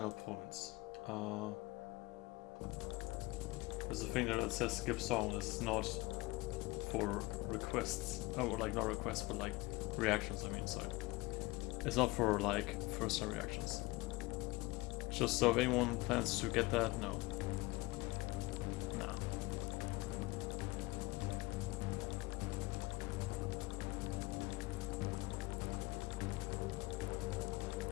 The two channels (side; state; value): right; quieter; 22.3 dB